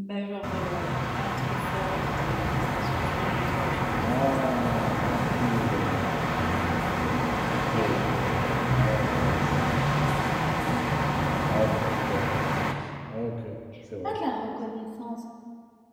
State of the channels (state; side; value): identical; both; correlation 1.00